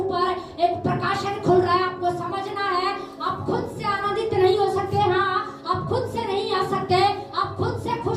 एक प्रकाशन खुल रहा है। आपको समझना है, आप खुद से आनंदित नहीं हो सकते, हाँ आप खुद से नहीं आ सकते, आप खुद से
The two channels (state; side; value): identical; both; correlation 1.00